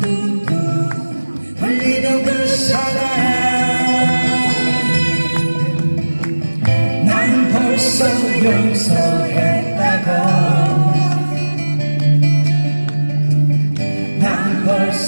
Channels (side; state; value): both; inverted; correlation -1.00